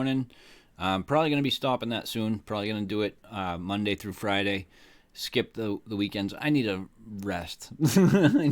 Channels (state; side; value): identical; both; correlation 1.00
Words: I'm probably going to be stopping that soon. Probably going to do it Monday through Friday. Skip the weekends. I need a rest.